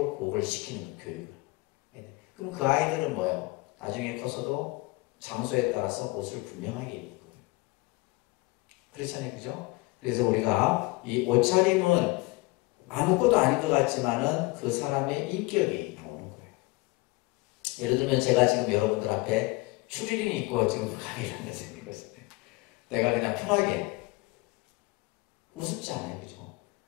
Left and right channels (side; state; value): right; quieter; 22.9 dB